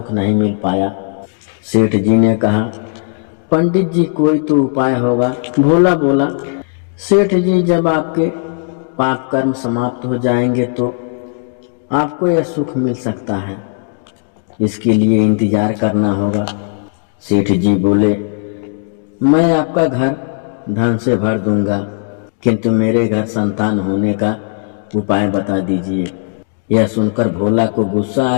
नहीं मिल पाया। सेठ जी ने कहा, पंडित जी कोई तो उपाय होगा। भोला बोला, सेठ जी, जब आपके पाप कर्म समाप्त हो जाएंगे तो आपको यह सुख मिल सकता है, इसके लिए इंतजार करना होगा। सेठ जी बोले, मैं आपका घर धन से भर दूंगा, किंतु मेरे घर संतान होने का उपाय बता दीजिए। यह सुनकर भोला को गुस्सा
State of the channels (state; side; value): silent; right; 69 dB below the other